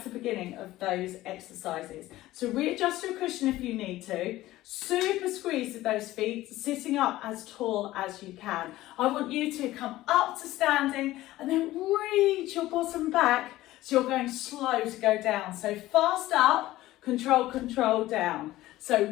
to the beginning of those exercises. So readjust your cushion if you need to. Super squeeze with those feet, sitting up as tall as you can. I want you to come up to standing and then reach your bottom back so you're going slow to go down. So fast up, control, control down.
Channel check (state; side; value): quieter; right; 16.2 dB